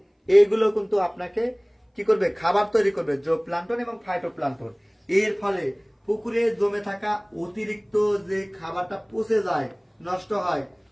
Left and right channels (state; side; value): identical; both; correlation 1.00